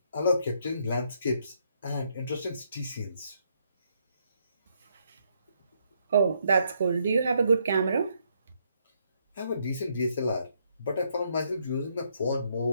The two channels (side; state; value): both; inverted; correlation -0.73